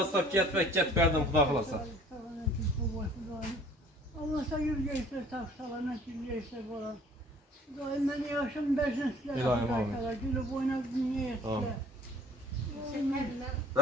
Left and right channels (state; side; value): normal; both; correlation 0.53